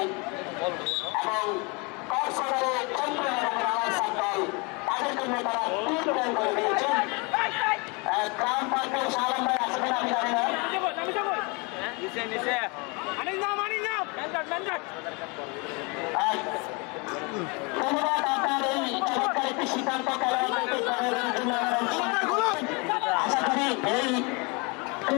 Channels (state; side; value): quieter; right; 29.9 dB